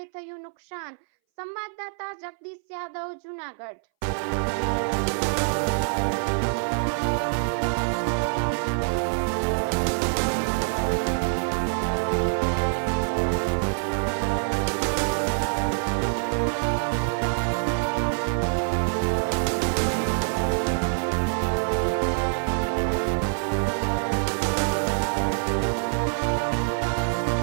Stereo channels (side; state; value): left; silent; 60 dB below the other